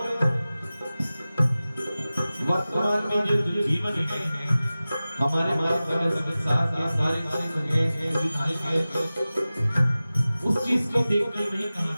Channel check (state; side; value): inverted; both; correlation -0.97